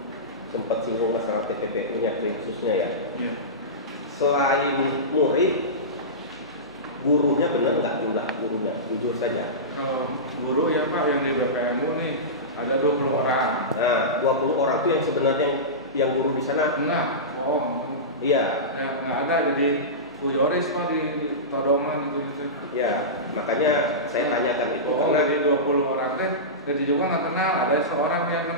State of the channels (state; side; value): normal; both; correlation -0.19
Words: sempat singgung masalah TPPU-nya, khususnya ya. Iya. Selain murid, gurunya benar nggak jumlah gurunya? Jujur saja. Kalau guru ya Pak yang di BPMU nih ada 20 orang. Nah, 20 orang itu yang sebenarnya yang guru di sana? Enggak, bohong. Iya. Ya, nggak ada, jadi Bu Yoris Pak di Todoman gitu. Ya, makanya saya tanyakan itu Oh, karena dari 20 orang teh, jadi juga nggak kenal, ada seorang yang